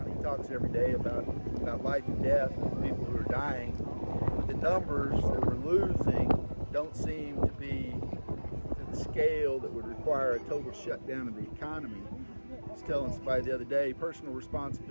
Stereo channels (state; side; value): inverted; both; correlation -1.00